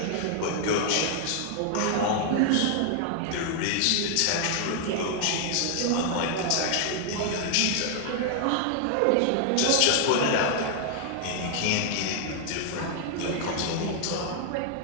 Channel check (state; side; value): different; both; correlation 0.00